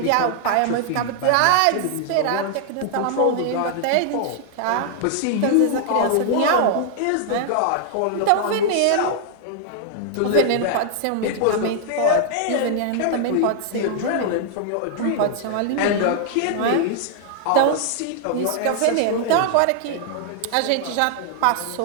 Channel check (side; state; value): both; different; correlation -0.01